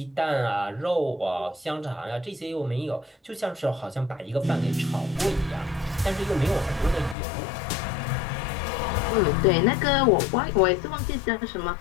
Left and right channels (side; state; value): right; drops out; at 7.2 s